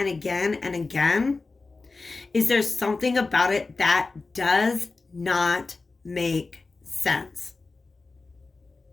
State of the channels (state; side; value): quieter; right; 3.8 dB